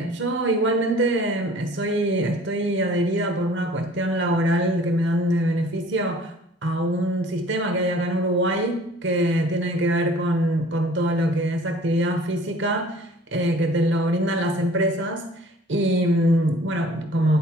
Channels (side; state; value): both; normal; correlation 0.50